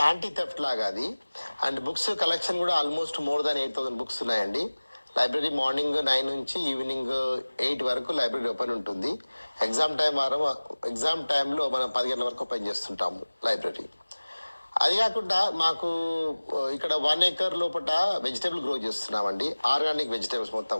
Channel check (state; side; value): inverted; both; correlation -1.00